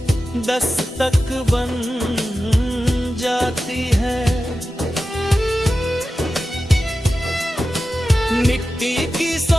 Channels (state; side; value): normal; both; correlation 0.93